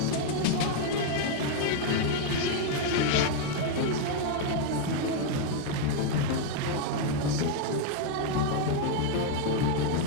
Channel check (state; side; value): different; both; correlation 0.00